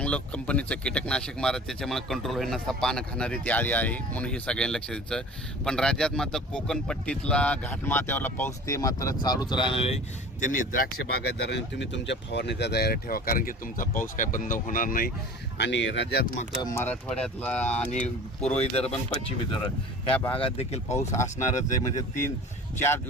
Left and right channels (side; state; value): both; normal; correlation 0.41